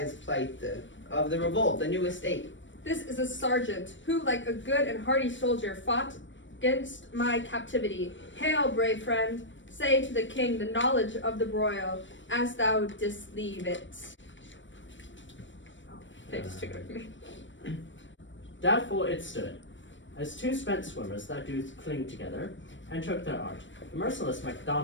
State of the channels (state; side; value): late; right; 0.55 ms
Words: plight of the revolt, the new estate. This is a sergeant who, like a good and hardy soldier, fought against my captivity. Hail, brave friend, say to the king the knowledge of the broil, as thou didst leave it. Oh, they just took it away from me. Doubtful it stood, as two spent swimmers that do cling together, and took their art. The merciless